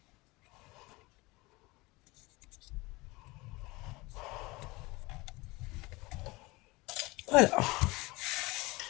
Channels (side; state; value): right; quieter; 22.8 dB